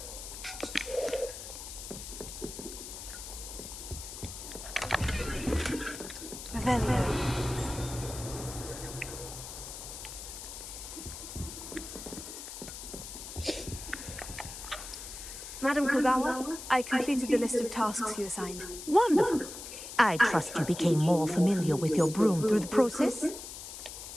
Madam Kogawa, I completed the list of tasks you assigned. Wonderful. I trust you became more familiar with your broom through the process?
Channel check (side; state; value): left; noise; hiss, 10 dB below the sound